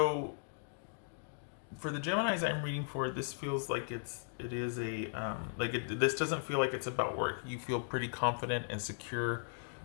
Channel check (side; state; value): right; silent; digital silence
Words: for the Geminis I'm reading for, this feels like it is a this doesn't feel like it's about work. You feel pretty confident and secure,